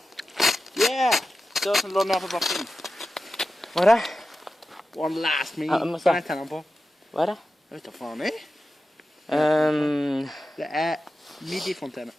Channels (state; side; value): normal; both; correlation 0.92